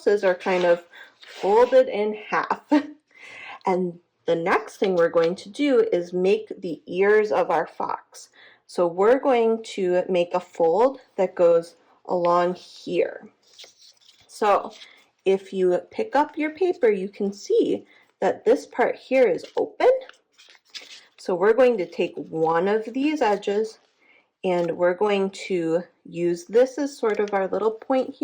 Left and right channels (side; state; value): both; identical; correlation 1.00